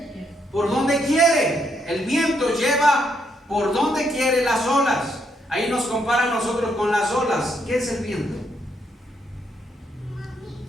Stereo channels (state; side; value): normal; both; correlation 0.76